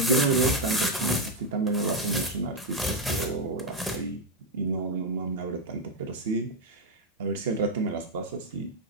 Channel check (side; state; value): both; normal; correlation 0.04